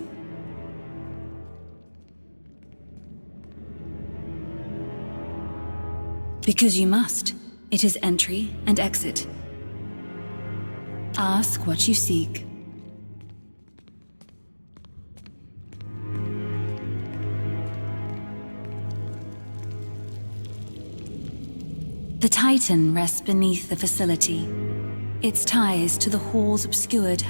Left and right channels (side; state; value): both; inverted; correlation -1.00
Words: Because you must. It is entry and exit. Ask what you seek. The Titan rests beneath the facility. Its ties to the halls obscured